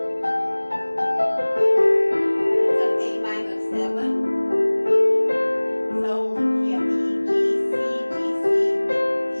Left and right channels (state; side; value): inverted; both; correlation -1.00